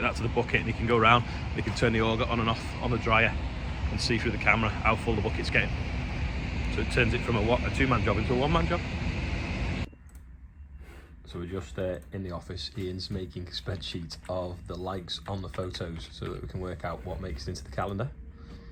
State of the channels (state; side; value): identical; both; correlation 1.00